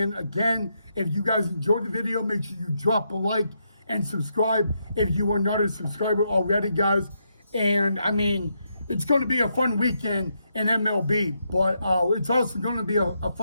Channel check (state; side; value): inverted; both; correlation -0.80